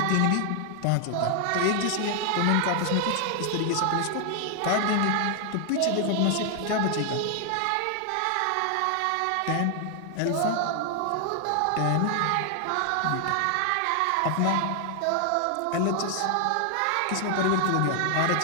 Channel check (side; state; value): both; different; correlation 0.00